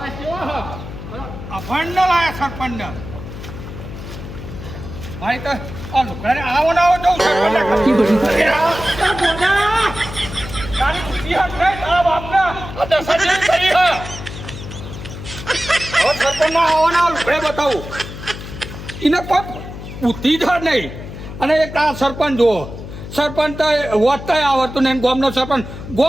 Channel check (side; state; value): left; noise; hum, 11 dB below the sound